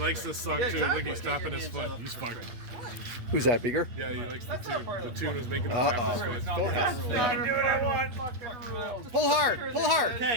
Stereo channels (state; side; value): late; left; 8.1 ms